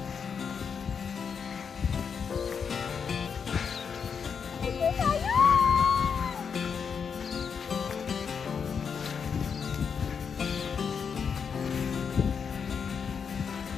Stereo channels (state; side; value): quieter; right; 6.5 dB